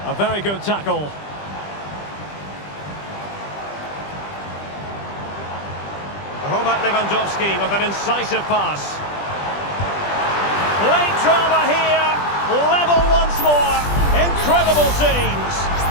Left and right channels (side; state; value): right; late; 20 ms